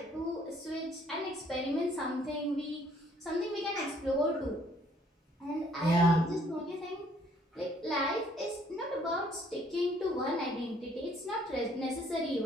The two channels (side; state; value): both; normal; correlation 0.63